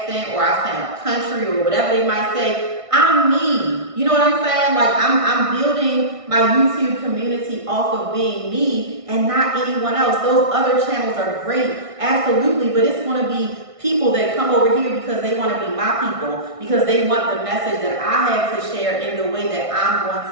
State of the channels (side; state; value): left; late; 1.6 ms